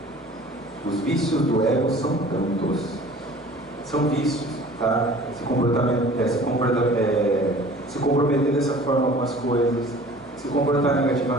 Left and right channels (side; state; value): both; normal; correlation 0.47